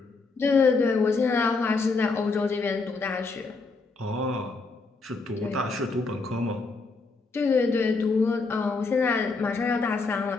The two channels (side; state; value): right; quieter; 4.0 dB